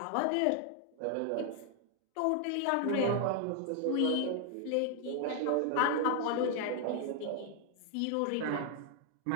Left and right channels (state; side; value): different; both; correlation 0.00